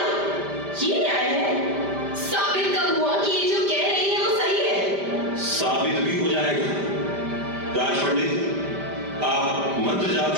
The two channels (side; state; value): left; late; 5.1 ms